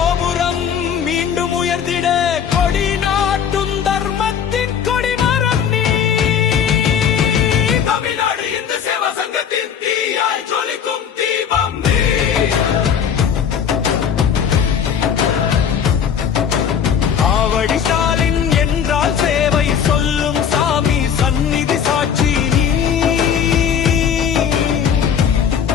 மீண்டும் உயர்ந்திட, கொடி நாட்டும் தர்மத்தின் கொடிமரம் நீ. தமிழ்நாடு இந்து சேவா சங்கத்தின் தீயாய் ஜொலிக்கும் தீபம் நீ. ஆவடி ஸ்டாலின் என்றால் சேவை சொல்லும் சாமி சந்நிதி சாட்சி நீ.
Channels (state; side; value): quieter; right; 7.9 dB